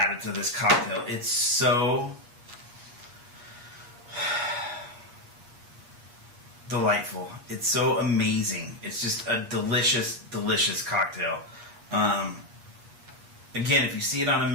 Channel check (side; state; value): left; late; 8.4 ms